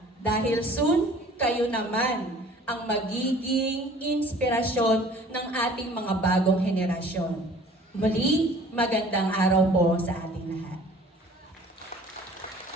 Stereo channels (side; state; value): both; normal; correlation 0.50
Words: Dahil soon, kayo naman ang magiging inspirasyon ng ating mga bagong henerasyon. Muli, magandang araw po sa ating lahat.